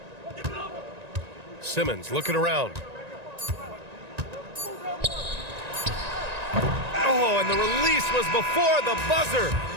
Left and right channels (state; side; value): late; left; 1.9 ms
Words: Simmons looking around. Oh, and the release was before the buzzer,